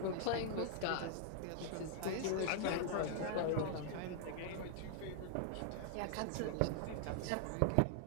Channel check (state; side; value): different; both; correlation 0.00